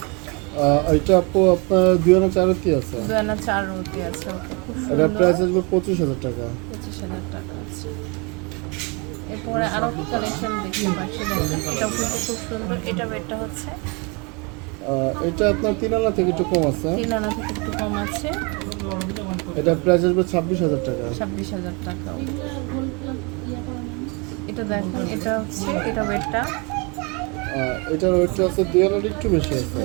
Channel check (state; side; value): quieter; left; 30.9 dB